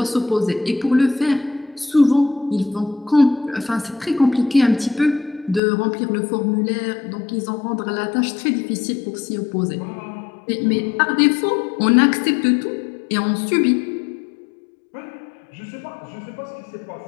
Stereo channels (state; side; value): drops out; right; at 5.6 s